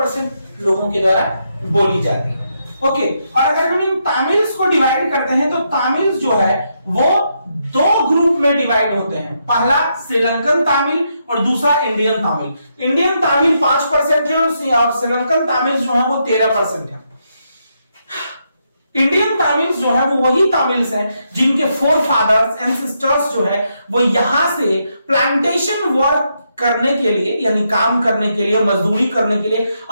लोगों के द्वारा बोली जाती है। ओके, और अगर हम इन तमिल्स को डिवाइड करते हैं तो तमिल्स जो है वो दो ग्रुप में डिवाइड होते हैं, पहला श्रीलंकन तमिल और दूसरा इंडियन तमिल। इंडियन तमिल 5% है और श्रीलंकन तमिल जो है वो 13% है। इंडियन तमिल्स जो है वो वही तमिल्स हैं जिनके फोर फादर्स एंसेस्टर्स जो है वो यहां से प्लांटेशन वर्क करने के लिए, यानी काम करने के लिए, मजदूरी करने के लिए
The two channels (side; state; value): both; inverted; correlation -0.80